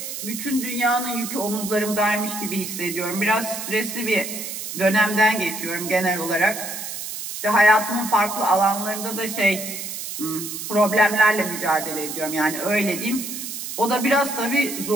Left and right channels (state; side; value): noise; right; hiss, 7 dB below the sound